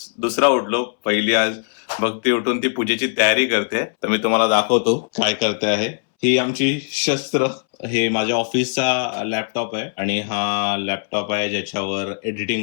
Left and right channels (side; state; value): right; silent; 64 dB below the other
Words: दुसरा उठलो. पहिली आज भक्ती उठून ती पूजेची तयारी करते, तर मी तुम्हाला दाखवतो काय करते आहे. ही आमची शस्त्र. हे माझ्या ऑफिसचा लॅपटॉप आहे आणि हा लॅपटॉप आहे ज्याच्यावर